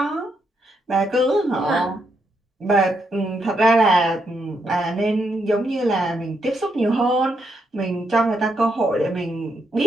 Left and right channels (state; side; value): normal; both; correlation 0.79